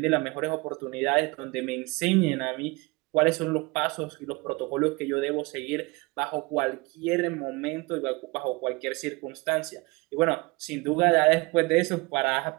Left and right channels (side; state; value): left; quieter; 25.1 dB